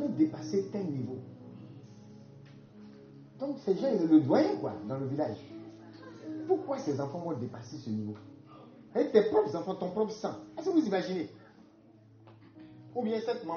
dépassé tel niveau. Donc ces gens, ils le doyen quoi, dans le village. Pourquoi ces enfants vont dépasser ce niveau? Avec tes propres enfants, ton propre sang. Est-ce que vous imaginez? Ou bien cette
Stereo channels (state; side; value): identical; both; correlation 1.00